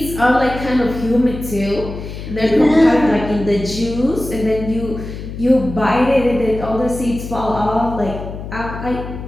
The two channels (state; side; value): noise; left; hum, 9 dB below the sound